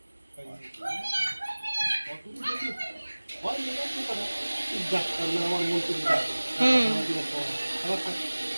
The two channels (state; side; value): inverted; both; correlation -1.00